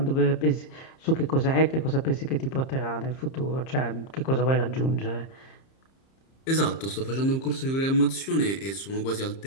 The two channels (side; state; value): right; late; 30 ms